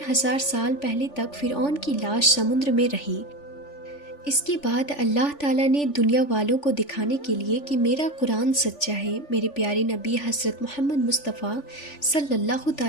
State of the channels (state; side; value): late; right; 3.4 ms